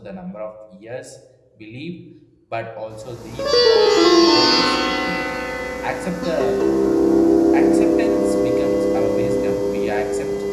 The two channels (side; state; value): both; identical; correlation 1.00